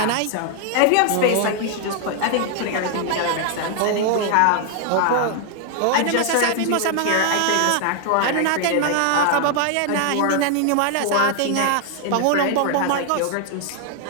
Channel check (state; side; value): different; both; correlation 0.00